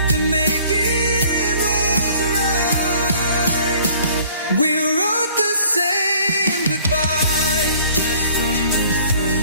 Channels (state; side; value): inverted; both; correlation -0.54